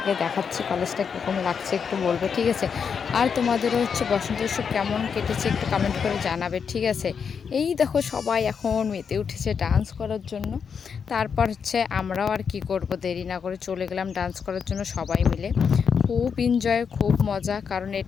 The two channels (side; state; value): right; quieter; 6.5 dB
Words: দেখাচ্ছি, কলেজটা কীরকম লাগছে একটু বলবে, ঠিক আছে? আর তোমাদেরও হচ্ছে বসন্ত উৎসব কেমন কেটেছে একটু কমেন্ট করে জানাবে, ঠিক আছে? এই দেখো সবাই এখন মেতে উঠেছে ডান্স করার জন্য। তারপর হচ্ছে আমরাও আর কি করব, দেরি না করে চলে গেলাম ডান্স করার জন্য সবাই মিলে। খুব এনজয়, খুব মজা, কারণ